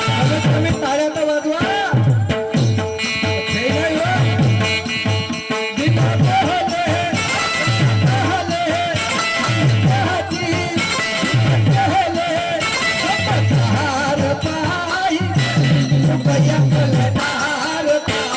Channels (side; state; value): both; identical; correlation 1.00